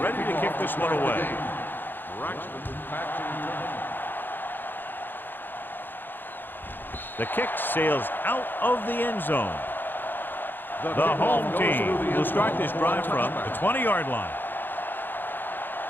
to kick this one away. The kick sails out of the end zone. The home team will start this drive from the 20-yard line.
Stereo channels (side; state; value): right; late; 0.094 ms